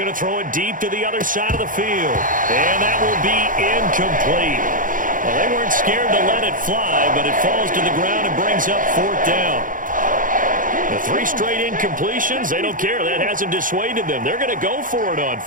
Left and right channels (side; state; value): left; late; 0.39 ms